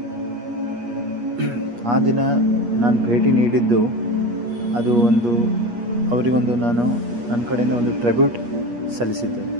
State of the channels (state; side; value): late; left; 8.4 ms